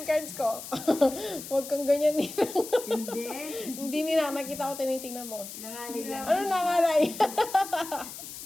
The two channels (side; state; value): left; noise; hiss, 11 dB below the sound